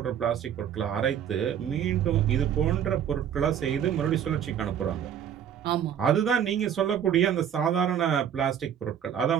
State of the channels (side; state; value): left; quieter; 9.1 dB